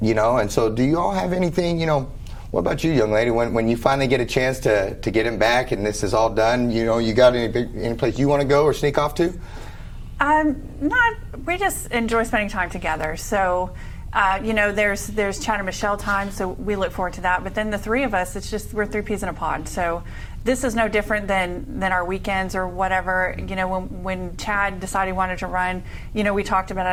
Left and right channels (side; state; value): both; identical; correlation 1.00